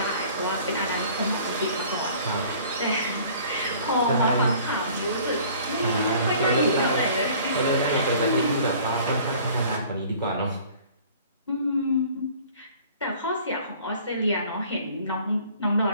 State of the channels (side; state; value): both; inverted; correlation -0.50